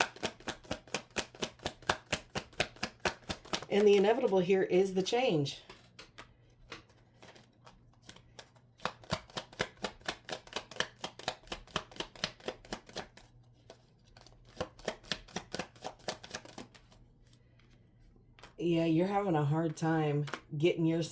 And the inevitable here is the change. Yeah, you're having a hard time getting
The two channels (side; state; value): both; identical; correlation 1.00